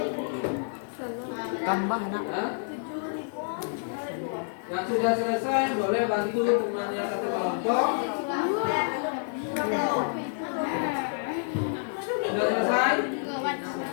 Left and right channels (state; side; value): silent; right; 59 dB below the other